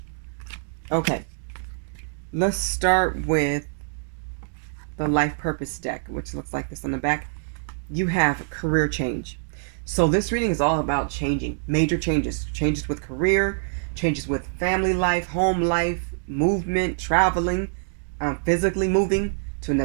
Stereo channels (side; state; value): left; silent; digital silence